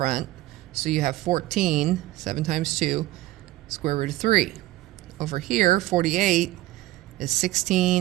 So you have 14, 7 times 2, square root of 3. Over here, 48 is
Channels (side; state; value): left; quieter; 17.0 dB